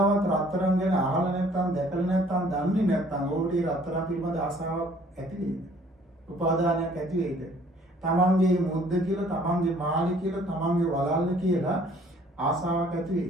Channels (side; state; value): both; normal; correlation 0.57